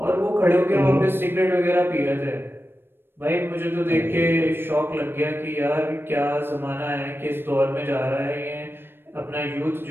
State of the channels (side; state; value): left; late; 0.10 ms